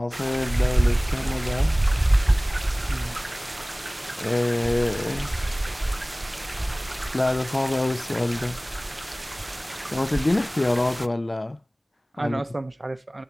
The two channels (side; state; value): both; normal; correlation 0.98